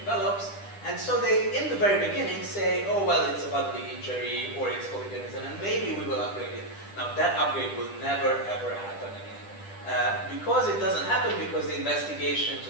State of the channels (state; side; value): late; right; 10 ms